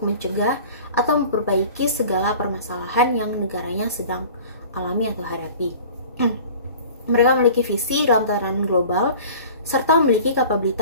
mencegah atau memperbaiki segala permasalahan yang negaranya sedang alami atau hadapi. Mereka memiliki visi dalam tatanan global serta memiliki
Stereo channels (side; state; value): both; inverted; correlation -0.43